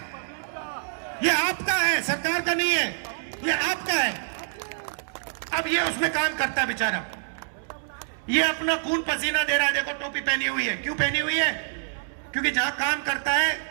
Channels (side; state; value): left; silent; 61 dB below the other